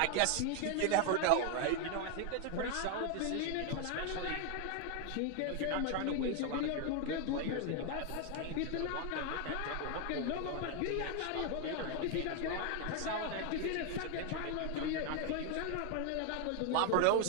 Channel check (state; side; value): different; both; correlation 0.01